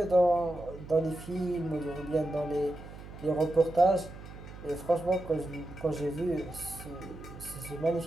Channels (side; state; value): right; noise; hum, 15 dB below the sound